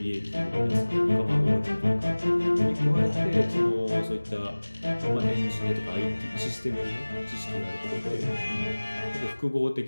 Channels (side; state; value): both; inverted; correlation -1.00